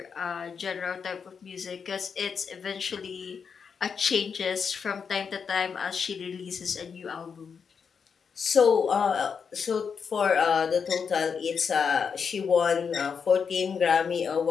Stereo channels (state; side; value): quieter; right; 6.3 dB